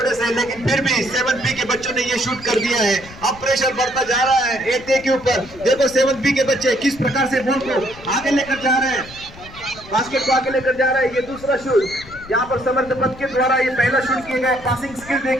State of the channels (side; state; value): left; noise; rumble, 19 dB below the sound